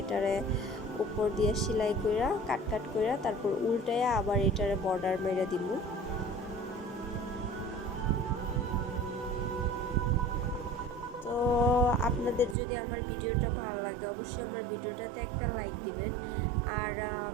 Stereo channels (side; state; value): left; drops out; at 12.6 s